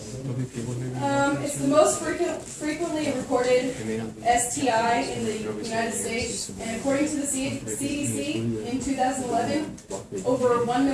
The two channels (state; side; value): identical; both; correlation 1.00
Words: It's the most frequently reported STI in the United States, and according to the CDC, in 2011, over 1